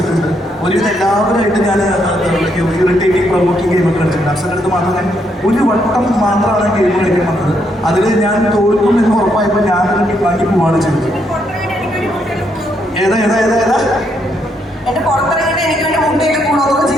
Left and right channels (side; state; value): both; normal; correlation 0.76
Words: ഒരുവിധം എല്ലാവരുമായിട്ട് ഞാൻ ഇറിറ്റേറ്റിംഗ് പ്രൊവോക്കിംഗ് ഗെയിമൊക്കെ കളിച്ചിട്ടുണ്ട്. അപ്സരയുടെ അടുത്ത് മാത്രം ഞാൻ ഒരു വട്ടം മാത്രമാണ് ഗെയിം കളിക്കാൻ വന്നത്. അതിൽ ഞാൻ തോൽക്കും എന്ന് ഉറപ്പായപ്പോൾ ഞാനൊരു ബാക്കി പോവാണ് ചെയ്തത്. ഏതാ എന്റെ പുറത്തിറങ്ങിയിട്ട് എനിക്ക് വേണ്ടി മുട്ടയൊക്കെ കൂടൊക്കെ